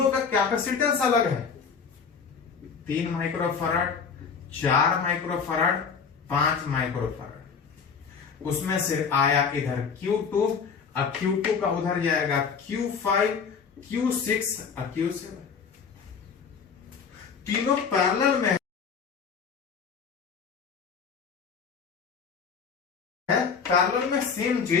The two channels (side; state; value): right; quieter; 6.0 dB